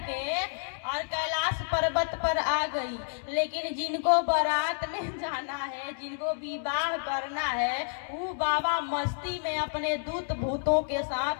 और कैलाश पर्वत पर आ गई। लेकिन जिनको बारात में जाना है, जिनको विवाह करना है, वो बाबा मस्ती में अपने दूत भूतों के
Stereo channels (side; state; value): right; silent; digital silence